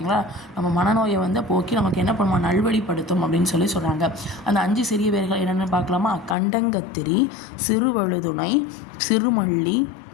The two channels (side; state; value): right; drops out; at 6.4 s